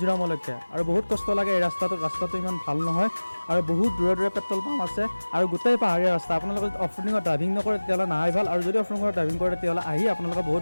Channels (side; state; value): both; inverted; correlation -1.00